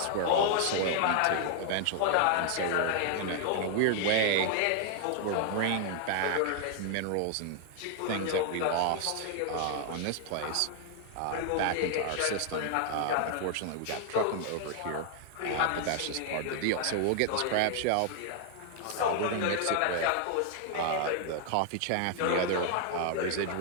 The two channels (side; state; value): both; different; correlation 0.00